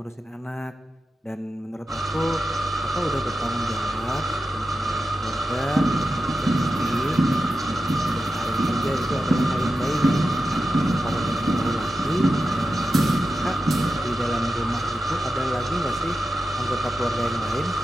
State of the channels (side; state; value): both; normal; correlation 0.91